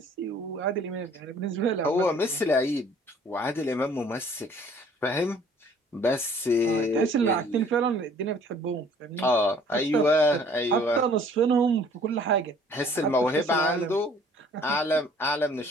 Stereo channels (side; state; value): both; normal; correlation 0.55